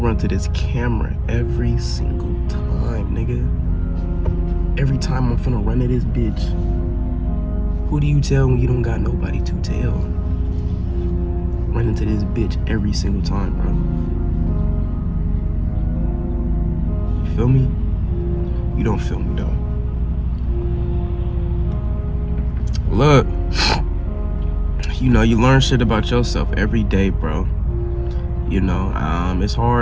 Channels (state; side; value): identical; both; correlation 1.00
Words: to this camera every single time, nigga. Every time I'm finna run to this bitch. Who do you tell when you don't got nobody to tell? Running to this bitch every single time, bro. You feel me? You don't feel me, though. Look, you know, you learn shit about yourself every day, bro. You know, it's